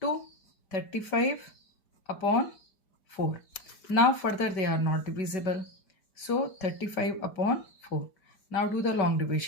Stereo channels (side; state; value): right; late; 5.0 ms